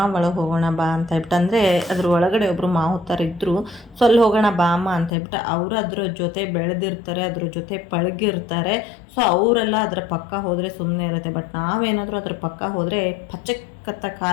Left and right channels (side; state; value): right; drops out; at 5.1 s